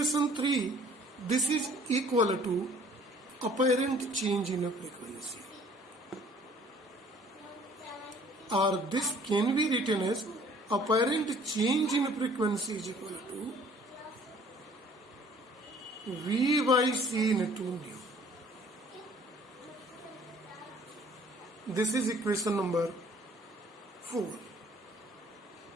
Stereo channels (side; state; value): both; normal; correlation 0.55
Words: 3, this is equal to apparent change in frequency. Or this can be written as apparent change in frequency is equal to V by C into nu. This is equation number 4.